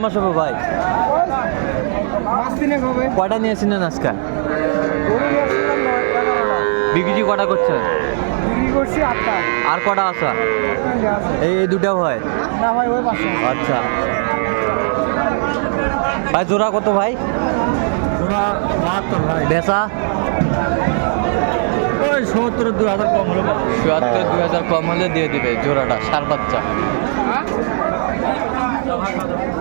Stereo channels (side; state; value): left; silent; 68 dB below the other